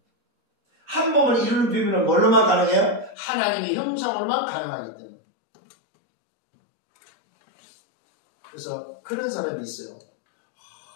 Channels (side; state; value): right; drops out; at 3.2 s